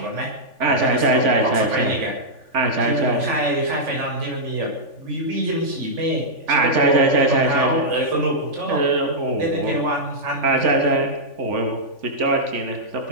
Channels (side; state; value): left; late; 3.5 ms